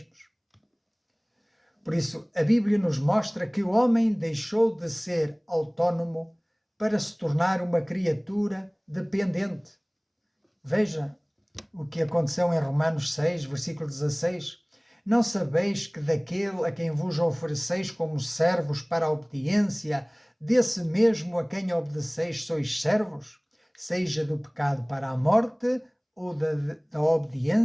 Por isso, a Bíblia nos mostra que o homem deixou de ser autónomo para se tornar uma criatura dependente. Veja o que aconteceu em Romanos 6, versículo 16. Não sabeis que daquele a quem vos ofereceis como servos para a obediência, desse mesmo a quem obedeceis sois servos, seja do pecado para a morte ou da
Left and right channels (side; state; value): both; identical; correlation 1.00